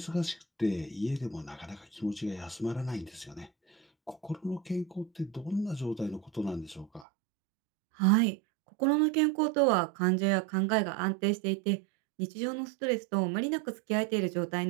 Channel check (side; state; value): left; drops out; at 7.1 s